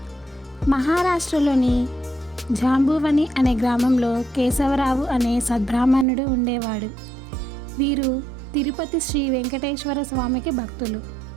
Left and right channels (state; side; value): drops out; left; at 6.1 s